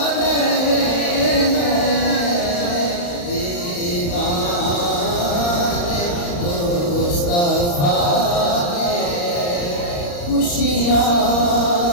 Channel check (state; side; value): late; right; 35 ms